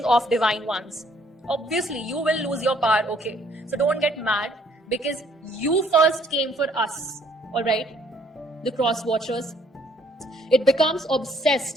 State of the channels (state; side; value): normal; both; correlation 0.63